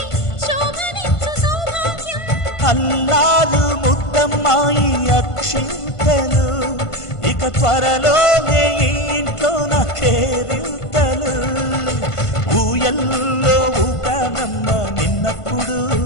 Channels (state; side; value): late; right; 1.5 ms